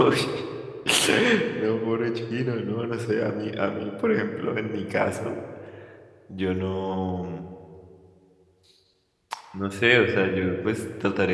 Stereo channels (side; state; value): both; identical; correlation 1.00